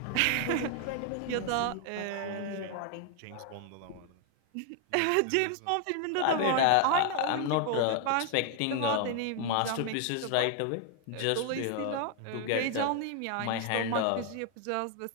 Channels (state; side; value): different; both; correlation 0.00